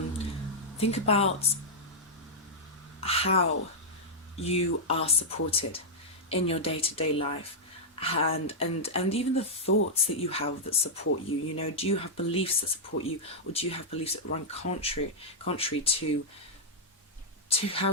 how you are supported in your day-to-day life, and even the thoughts that you have that support you. You know, do you have beliefs that support you, or do you have beliefs that run contrary to how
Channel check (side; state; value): both; normal; correlation -0.07